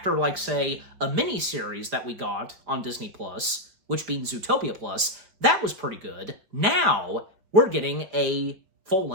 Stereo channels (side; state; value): left; late; 5.0 ms